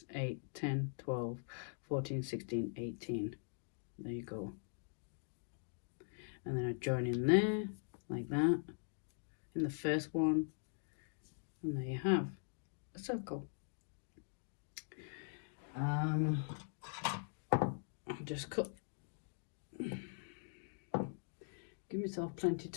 8, 10, 12, 14, 16, 18. There you go. And then I join in there, like that, in the first one. And there you have a circle. I'll just cut. Give myself plenty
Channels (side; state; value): right; silent; digital silence